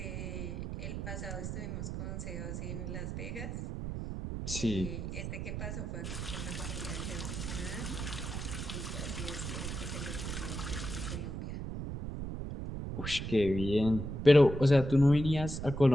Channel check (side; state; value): right; noise; rumble, 5 dB below the sound